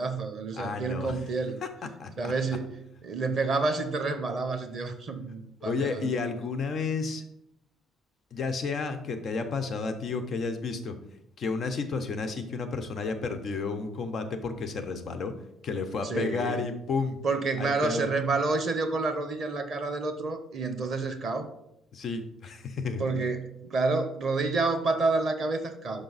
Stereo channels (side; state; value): both; normal; correlation 0.67